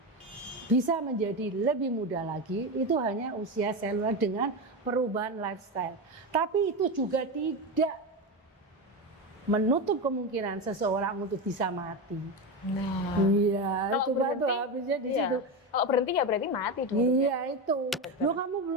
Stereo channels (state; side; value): normal; both; correlation 0.16